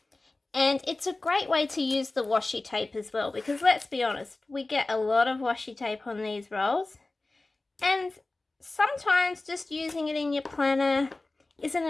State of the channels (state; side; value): quieter; right; 3.1 dB